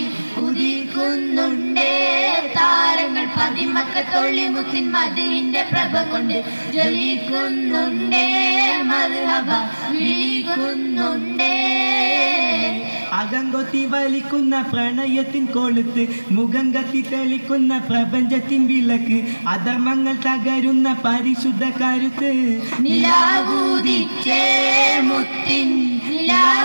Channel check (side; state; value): both; inverted; correlation -1.00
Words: ഉദിക്കുന്നുണ്ടേ താരങ്ങൾ പതിമക്കത്തൊള്ളി മുത്തിൻ മദീന്റെ പ്രഭം കൊണ്ട് ജ്വലിക്കുന്നുണ്ടേ മർഹബ വിളിക്കുന്നുണ്ടേ അകങ്കൊത്തി വലിക്കുന്ന പ്രണയത്തിൻ കൊളുത്ത് മുഖം കത്തി തെളിക്കുന്ന പ്രപഞ്ചത്തിൻ വിളക്ക് അധർമ്മങ്ങൾ തകരുന്ന പരിശുദ്ധ കരുത്ത് നിലാവൂദിച്ചേ മുത്തിൻ